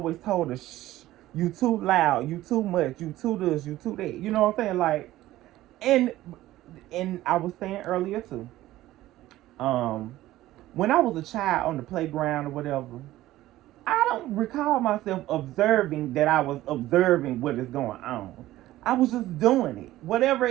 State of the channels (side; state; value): left; quieter; 15.5 dB